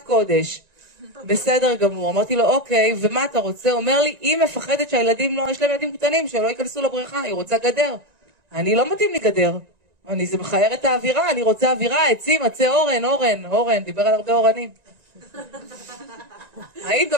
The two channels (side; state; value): left; late; 1.9 ms